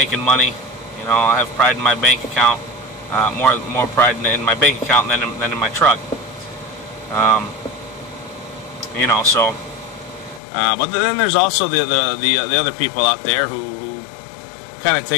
money. You know, I have pride in my bank account, more pride in my bank account than in my truck. You know, so. But then there's also the other people out there who kind of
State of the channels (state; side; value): drops out; right; at 10.4 s